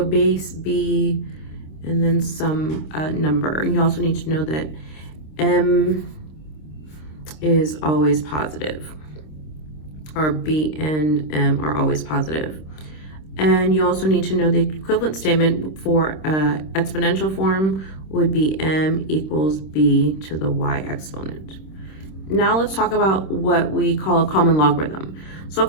base b and then some number. You also need to know that m is always positive, or b and m are always positive. And you also need to know the equivalent statement for exponential form would be m equals b to the y exponent. Now let's talk about what we call a common logarithm. So a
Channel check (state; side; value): late; right; 26 ms